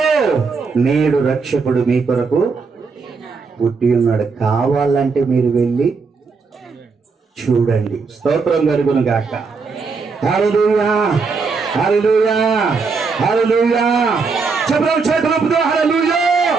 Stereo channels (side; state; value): left; quieter; 4.7 dB